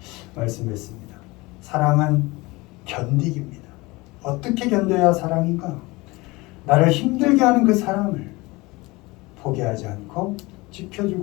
말씀했습니다. 사랑은 견디기입니다. 어떻게 견뎌야 사랑인가? 나를 힘들게 하는 그 사람을 포기하지 않고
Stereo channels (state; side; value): quieter; right; 22.8 dB